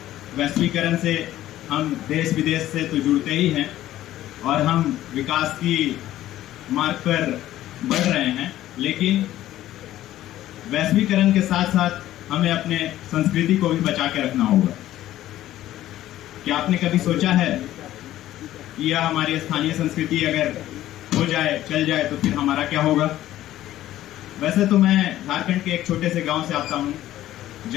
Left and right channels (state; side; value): quieter; right; 13.8 dB